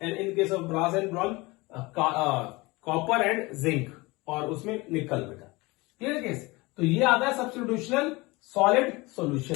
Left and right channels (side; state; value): right; quieter; 23.3 dB